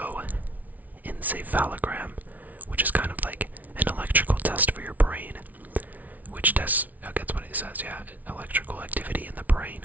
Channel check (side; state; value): left; late; 0.075 ms